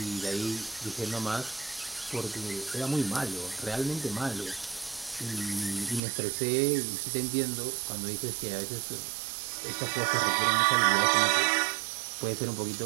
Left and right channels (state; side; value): drops out; left; at 6.0 s